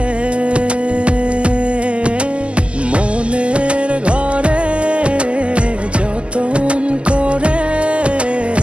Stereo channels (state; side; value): late; left; 0.054 ms